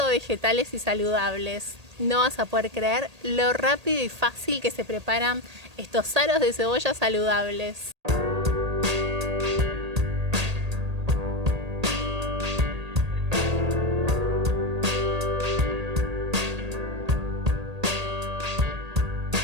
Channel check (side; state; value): left; late; 1.8 ms